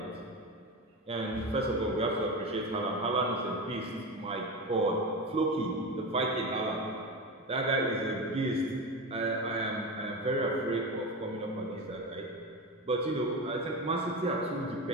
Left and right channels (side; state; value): both; normal; correlation 0.22